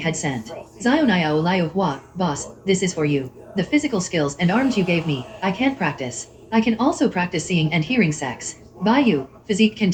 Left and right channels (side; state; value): both; identical; correlation 1.00